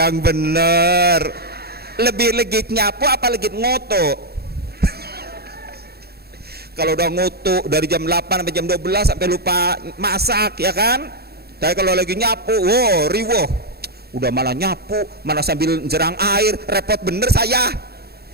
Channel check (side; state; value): left; late; 0.46 ms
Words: bener, lebih legit nyapu apa legit ngutu? Kalau udah ngutu dari jam 8 sampai jam 12 sampai lupa masak, ya kan? Tapi kalau lagi nyapu, riwuh, udah malah nyapu, malah sambil jerang air, repot bener saya.